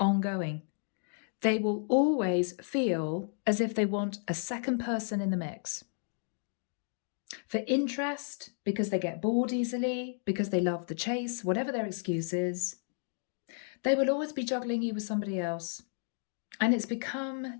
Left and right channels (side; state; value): right; silent; 56 dB below the other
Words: They will always feel as if they want a second person in the mix. For interest, because they get bored easily, because they love the chase, whatever their excuse is, they will always be juggling you with somebody else. And it's become